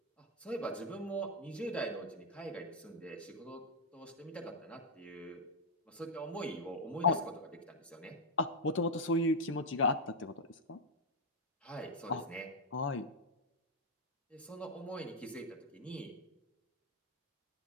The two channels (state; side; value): normal; both; correlation -0.01